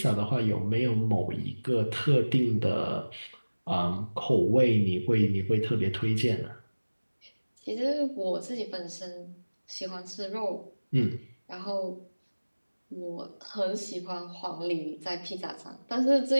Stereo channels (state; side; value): inverted; both; correlation -1.00